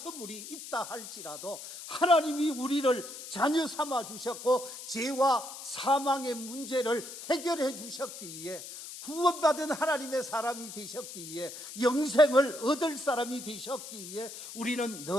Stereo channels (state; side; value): noise; left; hiss, 11 dB below the sound